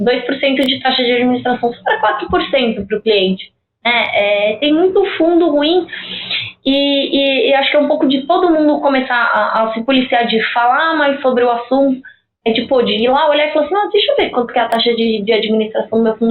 de taxa de administração, só para 4% para o cliente. Tem muito fundo ruim e acho que é um pouco de todo mundo começar a se policiar de falar mais sobre o assunto. De ir lá olhar e falar assim, deixa eu ver quanto que é a taxa de administração do meu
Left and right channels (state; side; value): identical; both; correlation 1.00